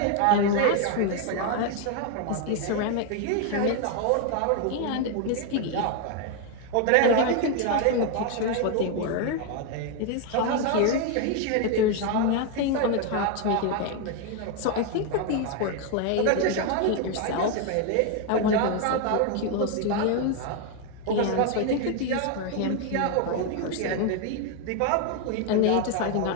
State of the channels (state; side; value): different; both; correlation 0.01